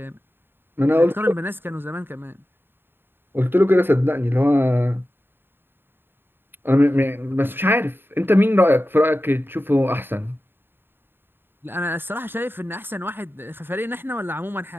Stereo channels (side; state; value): left; late; 0.10 ms